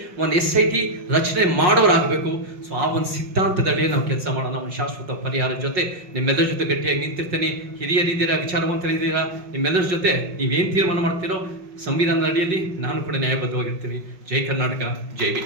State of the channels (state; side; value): late; left; 5.5 ms